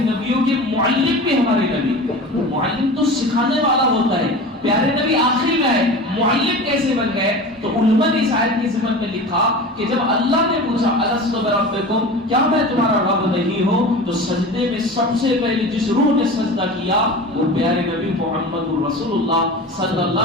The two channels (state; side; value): normal; both; correlation 0.33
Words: نبیوں کے معلم بھی ہمارے نبی. معلم تو سکھانے والا ہوتا ہے، پیارے نبی آخری میں ہے، معلم کیسے بن گئے؟ تو علماء نے اس آیت کی ضمن میں لکھا کہ جب اللہ نے پوچھا الست بربکم، کیا میں تمہارا رب نہیں ہوں؟ تو سجدے میں سب سے پہلے جس روح نے سجدہ کیا وہ پیارے نبی محمد رسول اللہ صلی